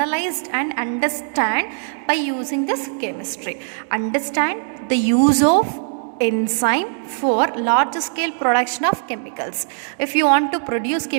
and understand by using this chemistry. Understand the use of enzyme for large scale production of chemicals. If you want to produce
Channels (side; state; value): left; silent; 65 dB below the other